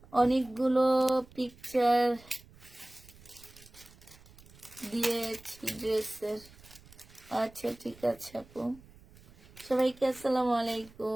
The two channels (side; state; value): right; noise; rumble, 24 dB below the sound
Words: অনেকগুলো পিকচার দিয়েছি ড্রেসের। আচ্ছা ঠিক আছে আপু। সবাইকে আসসালামু